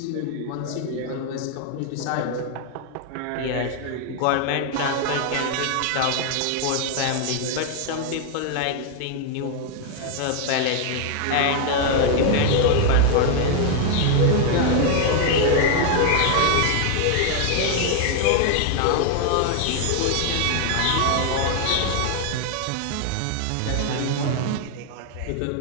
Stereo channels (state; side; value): different; both; correlation 0.00